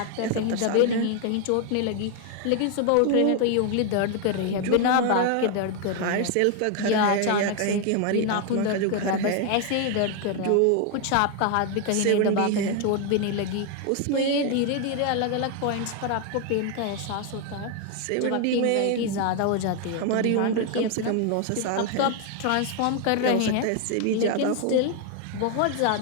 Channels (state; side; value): different; both; correlation 0.00